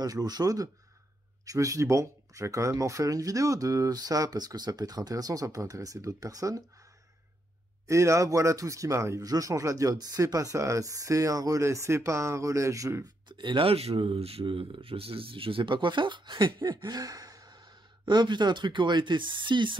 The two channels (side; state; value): both; normal; correlation 0.80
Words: l'eau chaude. Je me suis dit bon, je vais quand même en faire une vidéo de ça parce que ça peut être intéressant, ça peut intéresser d'autres personnes. Et là, voilà tout ce qui m'arrive. Je change la diode, c'est pas ça, c'est un relais, c'est pas un relais. Et là, je sais pas quoi faire. Ah putain, un truc qui aurait été si